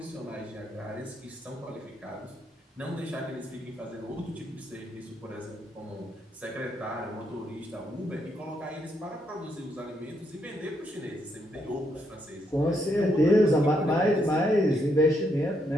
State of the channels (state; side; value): normal; both; correlation 0.77